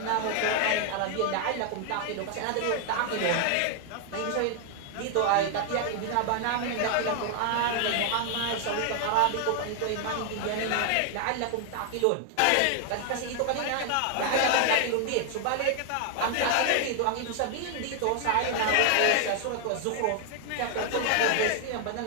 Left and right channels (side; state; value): both; different; correlation 0.00